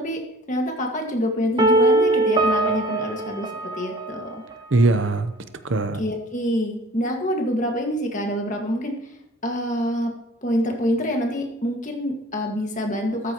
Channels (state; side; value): normal; both; correlation 0.50